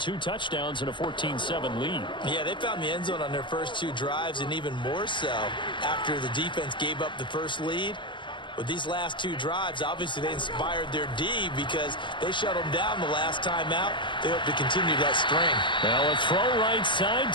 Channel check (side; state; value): right; late; 0.24 ms